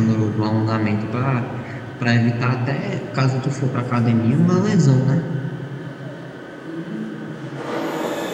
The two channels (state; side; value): identical; both; correlation 1.00